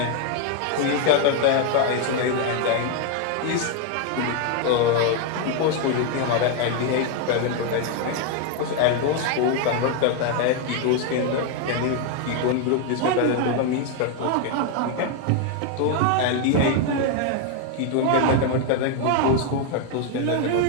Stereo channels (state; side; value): different; both; correlation 0.01